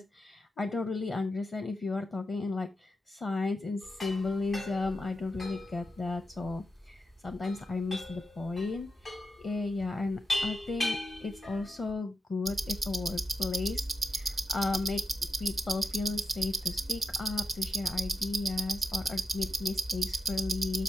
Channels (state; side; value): normal; both; correlation 0.86